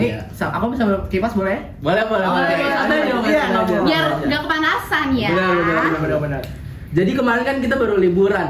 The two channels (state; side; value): identical; both; correlation 1.00